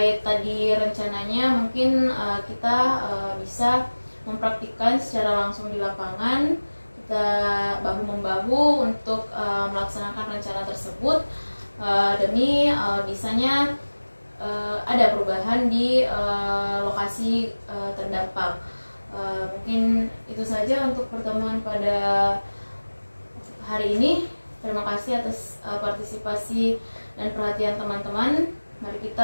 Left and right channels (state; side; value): inverted; both; correlation -1.00